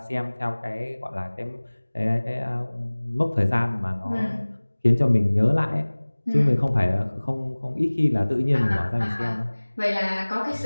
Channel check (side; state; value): both; inverted; correlation -1.00